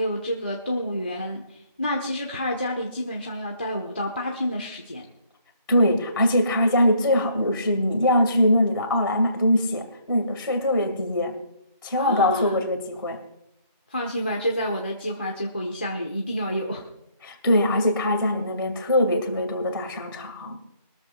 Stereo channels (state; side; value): inverted; both; correlation -0.65